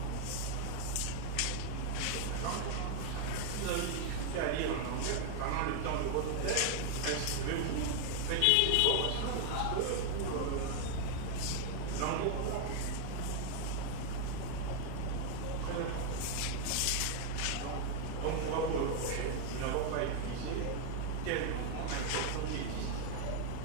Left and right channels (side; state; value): both; different; correlation 0.00